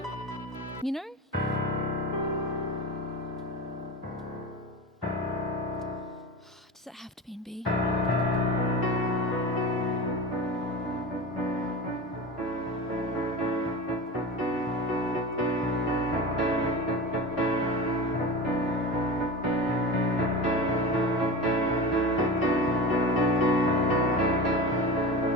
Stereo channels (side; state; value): both; normal; correlation 0.29